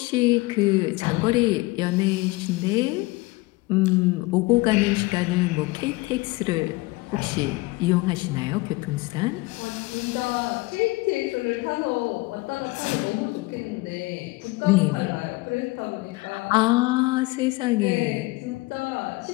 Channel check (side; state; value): right; quieter; 22.3 dB